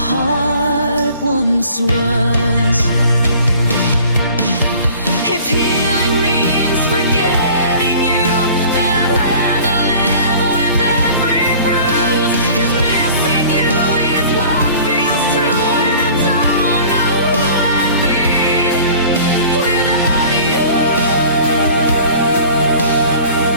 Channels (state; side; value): inverted; both; correlation -0.46